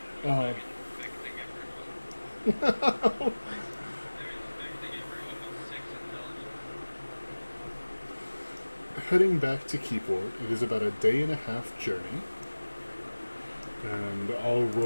Uh, Infecting everyone. They're infecting everyone with 6 intelligence. heading back to Keyport, it is about a day and a half journey. And I'll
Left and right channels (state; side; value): inverted; both; correlation -1.00